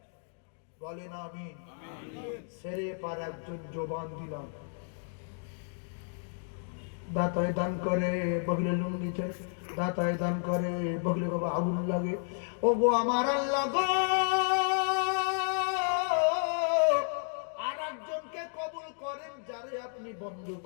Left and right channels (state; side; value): silent; right; digital silence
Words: বলেন আমিন সেরে পার একজন জবান দিলাম দাতায় দান করে বগলে লুঙ্গি দাতায় দান করে বগলে বাবা আগুন লাগে ও গো আমার আল্লাহ গো আর একজনকে কবুল করেন যারে আপনি বন্ধ